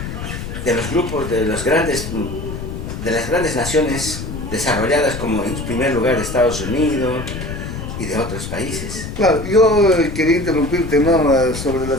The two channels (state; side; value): noise; left; rumble, 7 dB below the sound